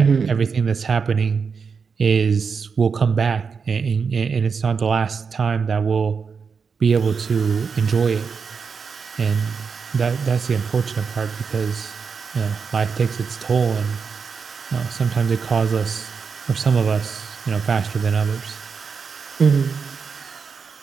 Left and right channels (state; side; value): quieter; left; 5.7 dB